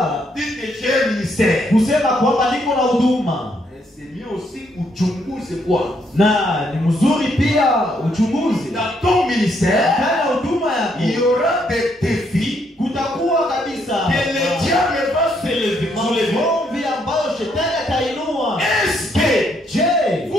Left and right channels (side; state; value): both; normal; correlation 0.73